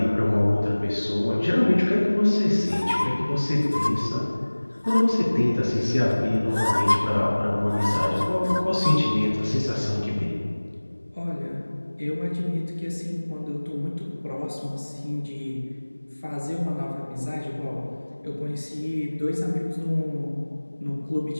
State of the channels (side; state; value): both; inverted; correlation -1.00